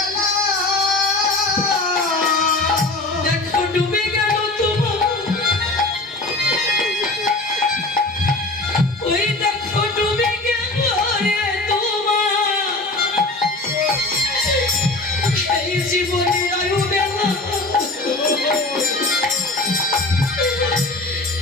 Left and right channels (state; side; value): quieter; right; 3.0 dB